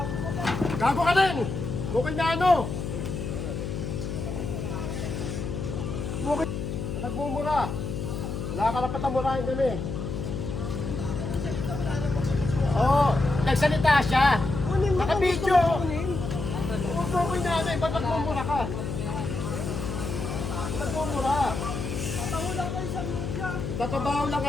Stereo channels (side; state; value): left; noise; hum, 4 dB below the sound